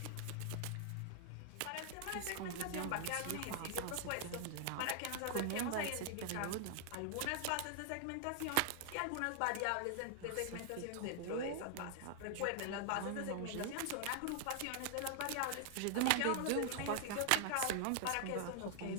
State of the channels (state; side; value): different; both; correlation 0.00